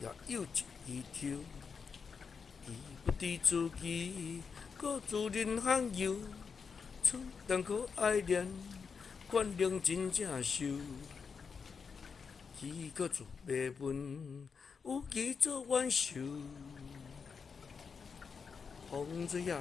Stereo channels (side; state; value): right; quieter; 5.7 dB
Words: 也有一条。伊不知自己，搁自认罕有，出但可爱恋，原谅真正受。伊搁做袂问，有其做挽手。风吹也